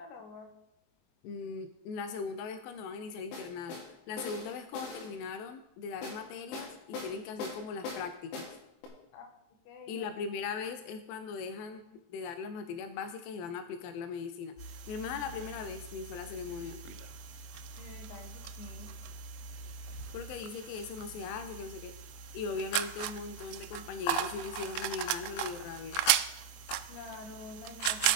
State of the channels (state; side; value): late; right; 23 ms